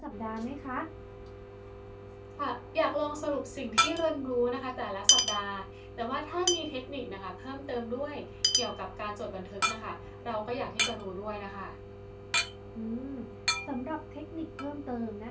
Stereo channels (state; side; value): identical; both; correlation 1.00